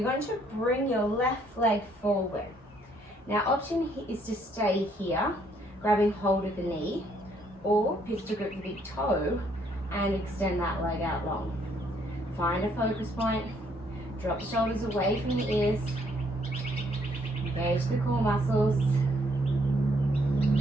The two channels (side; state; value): both; normal; correlation 0.68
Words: going to bring your left leg forward. Now, option is to stay here, grabbing hold of the knee, or pistol grip the big toe and extend that leg out long. Find a focus point, drop the shoulders away from the ears, engage the core muscles,